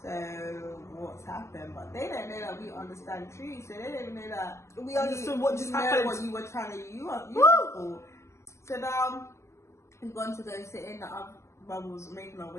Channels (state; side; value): late; right; 0.14 ms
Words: So what's happened? But they don't know that we understand trees, so they don't know that We understood what just happened. What you were trying to use for. So now we've gone to go sit in the other. Well, was making our